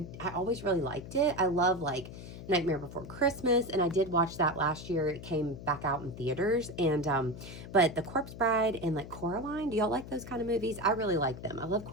I always really liked it. I love like Nightmare Before Christmas, and I did watch that last year. It came back out in theaters, and but the Corpse Bride and like Coraline, do y'all like those kind of movies? I really like them. I love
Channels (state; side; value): noise; left; hum, 12 dB below the sound